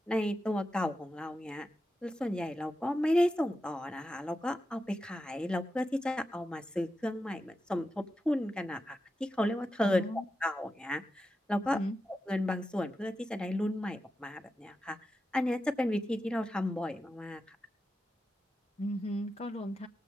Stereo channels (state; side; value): normal; both; correlation 0.90